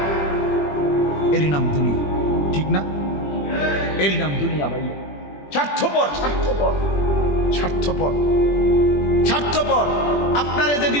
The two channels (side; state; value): right; late; 21 ms